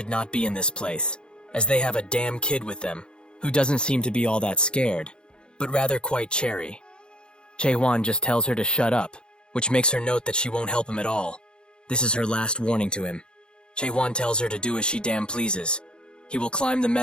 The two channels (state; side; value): late; right; 0.051 ms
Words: not be in this place, as they have a damn kid with them, who doesn't seem to be all that scared, but rather quite cherry. Chae-Hwan just tells her to shut up, which makes her note that she won't help him at all. This is her last warning to him. Chae-Hwan tells her to do as she damn pleases. He will climb the